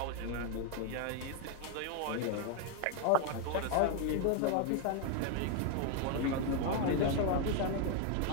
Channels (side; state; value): both; different; correlation 0.01